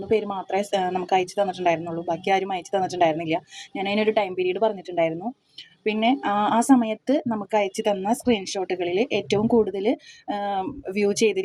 പേര് മാത്രമേ നമുക്ക് അയച്ചു തന്നിട്ടുണ്ടായിരുന്നുള്ളൂ. ബാക്കി ആരും അയച്ചു തന്നിട്ടുണ്ടായിരുന്നില്ല. ഞാൻ അതിനൊരു ടൈം പീരീഡ് പറഞ്ഞിട്ടുണ്ടായിരുന്നു. പിന്നെ ആ സമയത്ത് നമുക്ക് അയച്ചു തന്ന സ്ക്രീൻഷോട്ടുകളിൽ ഏറ്റവും കൂടുതൽ വ്യൂ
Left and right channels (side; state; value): both; identical; correlation 1.00